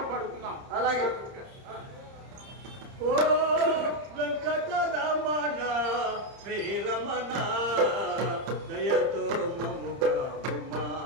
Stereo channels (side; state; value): left; late; 30 ms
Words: పాడుకుందాం. అలాగే. ఓ వెంకటరమణ శ్రీరమణ దయతో మముగా ఉమా,